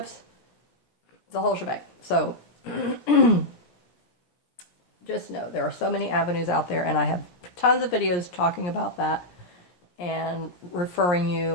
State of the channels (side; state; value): right; late; 17 ms